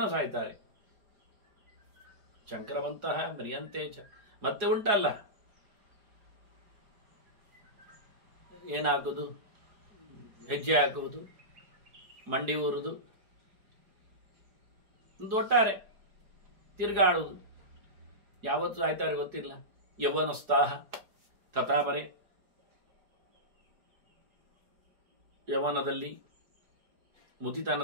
ಸಾಯ್ತಾರೆ. ಶಂಕರವಂತಹ ಮರಿಯಂತೇಚ. ಮತ್ತೆ ಉಂಟಲ್ಲ, ಏನಾಗುವುದು? ಹೆಜ್ಜೆ ಹಾಕುವುದು, ಮಂಡಿ ಊರುವುದು, ಒಂದು ಒಟ್ಟಾರೆ ತಿರುಗಾಡುವುದು. ಯಾವತ್ತು ಸಾಯ್ತಾರೆ ಗೊತ್ತಿಲ್ಲ. ಯೌವನೋತ್ಸಾಹ ತಥಾಮರೆ. ಯೌವನದಲ್ಲಿ,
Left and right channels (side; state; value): left; late; 4.8 ms